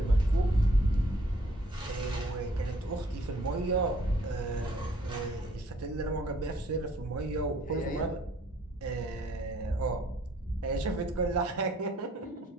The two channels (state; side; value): normal; both; correlation 0.61